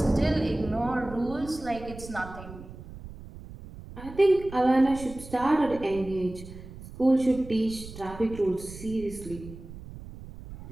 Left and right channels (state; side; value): noise; right; rumble, 14 dB below the sound